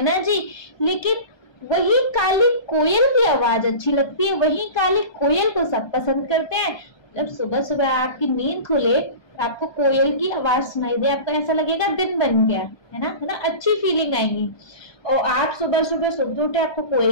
ना जी। लेकिन वही काली कोयल की आवाज अच्छी लगती है, वही काली कोयल को सब पसंद करते हैं। जब सुबह सुबह आपकी नींद खुले, आपको कोयल की आवाज सुनाई दे, आपको ऐसा लगेगा दिन बन गया, है ना, अच्छी फीलिंग आएगी। और आप सुबह सुबह सुबह उठे, आपको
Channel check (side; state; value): right; late; 1.2 ms